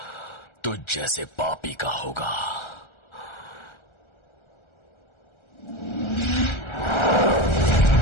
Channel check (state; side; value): late; right; 1.3 ms